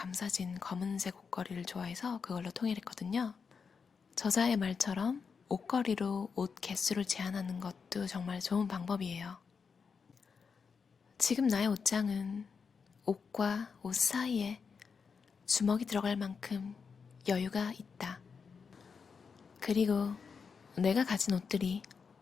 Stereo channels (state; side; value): quieter; right; 5.7 dB